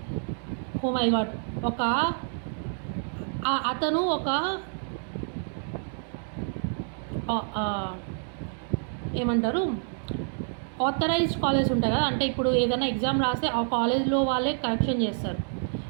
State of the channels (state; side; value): silent; left; 59 dB below the other